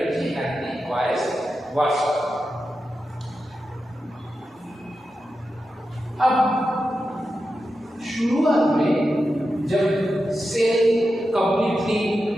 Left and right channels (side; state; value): both; normal; correlation 0.90